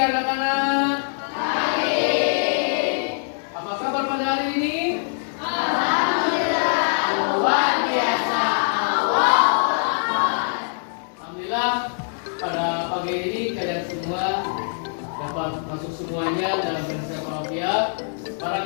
anak-anak. Apa kabar pada hari ini? Luar biasa. Alhamdulillah pada pagi ini kalian semua dapat masuk semuanya dalam bahasa Arabia.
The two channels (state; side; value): silent; right; 63 dB below the other